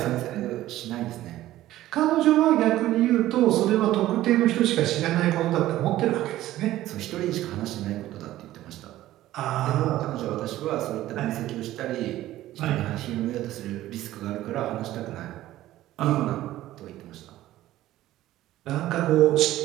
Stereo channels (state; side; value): quieter; left; 14.8 dB